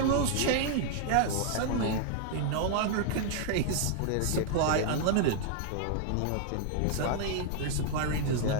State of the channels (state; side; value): different; both; correlation 0.00